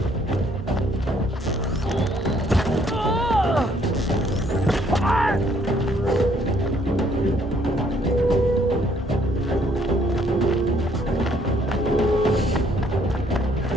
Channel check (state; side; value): normal; both; correlation 0.65